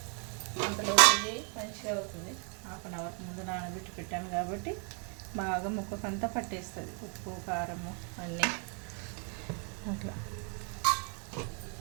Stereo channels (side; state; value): left; quieter; 37.8 dB